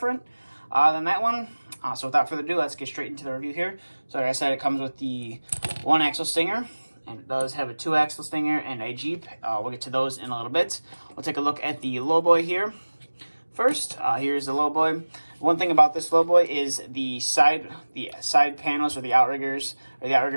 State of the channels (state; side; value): inverted; both; correlation -1.00